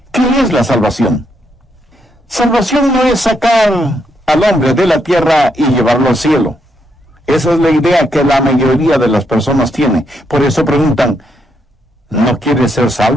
¿Qué es la salvación? Salvación no es sacar al hombre de la tierra y llevarlo al cielo. Esa es la idea que la mayoría de las personas tiene. Por eso preguntan: ¿no quiere ser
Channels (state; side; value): normal; both; correlation 0.77